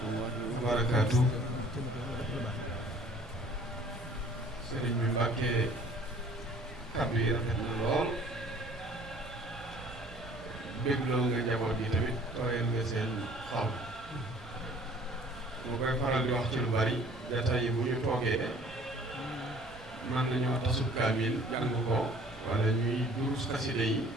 wa barakaatu. sëriñ bi Mbàkke kàddu yi rafet na lool bégloo nga njaboot gi tamit tooyal nga seen xol. moo koy faral di wax ci lu bari jataay yi bu ñu toogee mën nañoo tasub kaamil jàng ko wala ñuy durus xaside yi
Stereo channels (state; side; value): normal; both; correlation 0.53